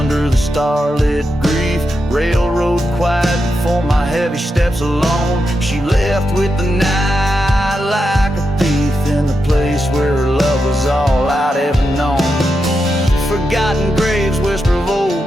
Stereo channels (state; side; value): normal; both; correlation 0.86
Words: the starlit grief, railroad quiet before my heavy steps alone. She left with the night like a thief in the place where her love was all I'd ever known. Forgotten graves whisper of